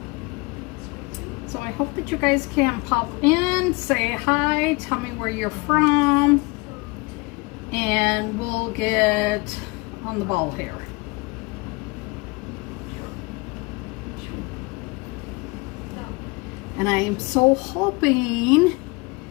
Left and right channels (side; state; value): right; quieter; 26.7 dB